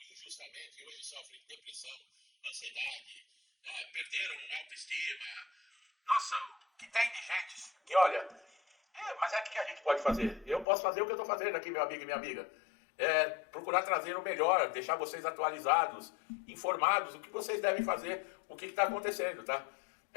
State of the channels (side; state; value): right; drops out; at 10.7 s